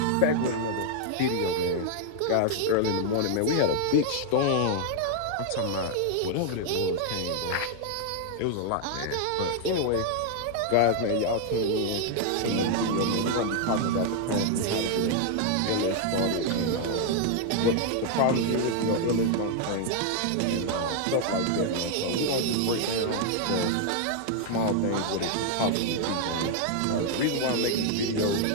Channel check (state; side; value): different; both; correlation 0.00